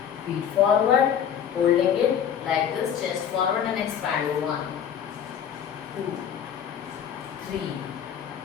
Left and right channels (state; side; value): quieter; right; 8.7 dB